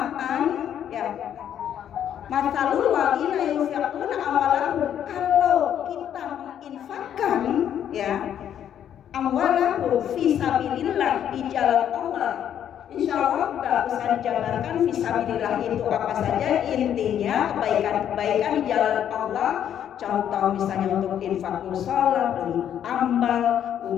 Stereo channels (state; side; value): quieter; right; 9.8 dB